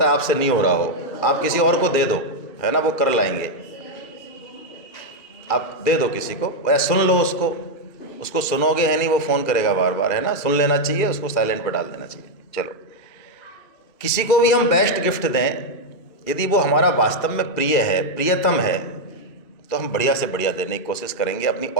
है आपसे नहीं हो रहा हो, आप किसी और को दे दो, है ना, वो कर लाएंगे, आप दे दो किसी को, या सुन लो उसको सुनोगे है नहीं, वो फ़ोन करेगा बार बार, है ना, सुन लेना चाहिए, उसको साइलेंट पर डाल देना चाहिए। चलो, किसी को भी हम बेस्ट गिफ्ट दें, यदि वो हमारा वास्तव में प्रिय है, प्रियतम है, तो हम बढ़िया से बढ़िया देने की कोशिश करेंगे, अपनी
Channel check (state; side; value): late; right; 2.3 ms